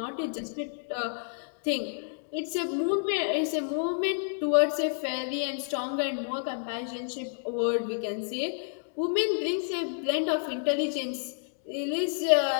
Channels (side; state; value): right; silent; digital silence